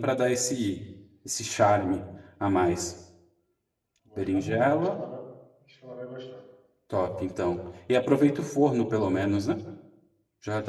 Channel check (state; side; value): identical; both; correlation 1.00